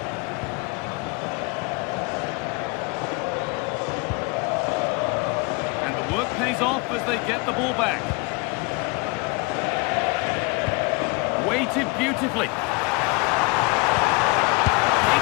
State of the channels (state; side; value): quieter; right; 28.7 dB